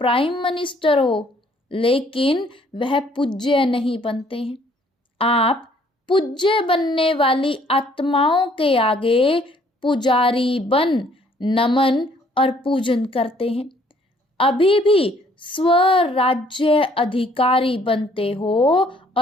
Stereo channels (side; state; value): both; normal; correlation 0.62